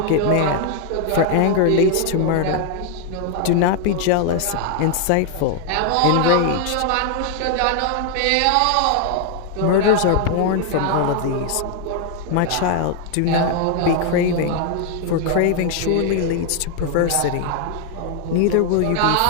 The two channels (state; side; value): different; both; correlation 0.00